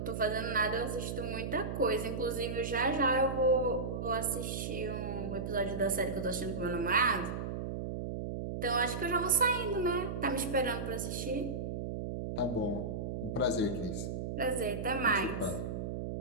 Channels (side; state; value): right; noise; hum, 4 dB below the sound